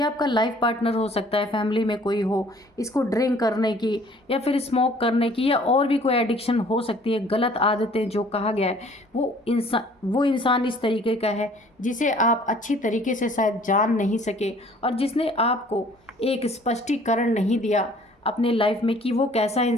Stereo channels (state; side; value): normal; both; correlation 0.55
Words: आपका लाइफ पार्टनर हो सकता है, फैमिली में कोई हो, इसको ड्रिंक करने की या फिर स्मोक करने की या और भी कोई एडिक्शन हो सकती है। गलत आदतें जो कहा गया है, वो इंसान इस तरीके का है जिसे आप अच्छी तरीके से शायद जान नहीं सके, और जिसने आपको एक स्पष्टीकरण नहीं दिया अपने लाइफ में कि वो कैसा